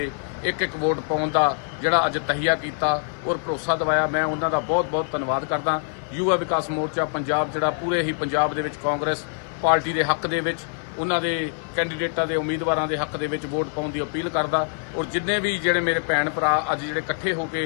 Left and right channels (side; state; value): right; silent; 62 dB below the other